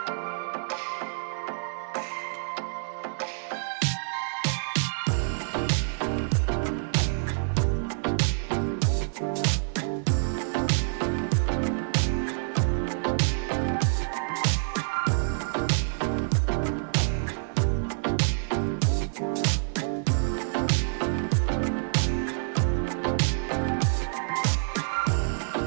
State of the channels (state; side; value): silent; left; digital silence